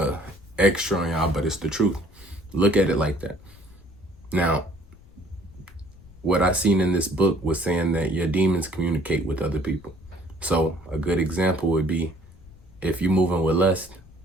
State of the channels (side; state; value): left; noise; rumble, 23 dB below the sound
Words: extra on y'all, but it's the truth. Look at it like that. Now, what I seen in this book was saying that your demons communicate with other people. So a good example would be if you're moving with lust